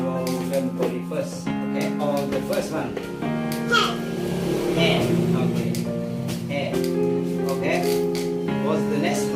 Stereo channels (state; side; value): identical; both; correlation 1.00